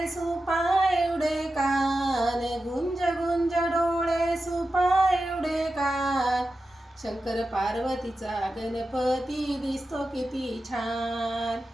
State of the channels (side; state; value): both; normal; correlation 0.92